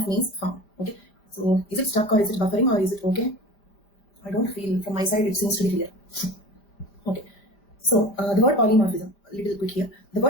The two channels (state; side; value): late; right; 5.0 ms